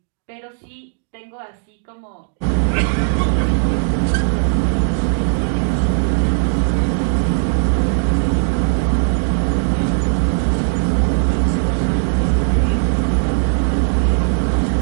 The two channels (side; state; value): left; silent; 67 dB below the other